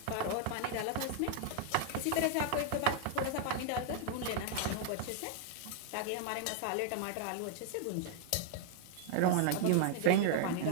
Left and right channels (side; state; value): both; different; correlation -0.01